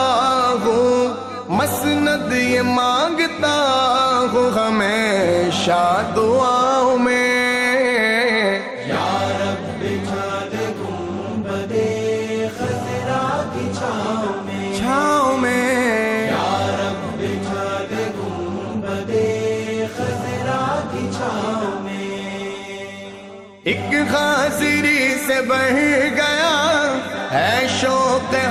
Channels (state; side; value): identical; both; correlation 1.00